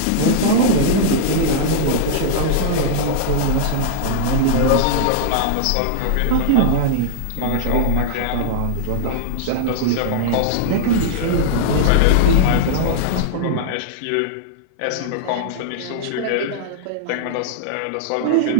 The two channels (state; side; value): different; both; correlation -0.01